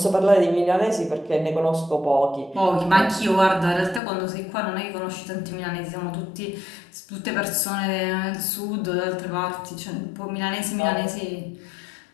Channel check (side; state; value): right; drops out; at 4.0 s